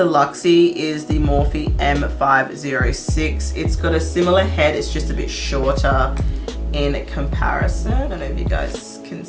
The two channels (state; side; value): identical; both; correlation 1.00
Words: Luxie is the Morphe M506. It's got a similar head, it's just a bit shorter in comparison. I don't know if you guys can